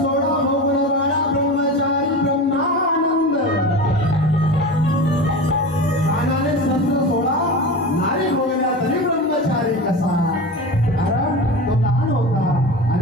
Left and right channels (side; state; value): both; normal; correlation 0.28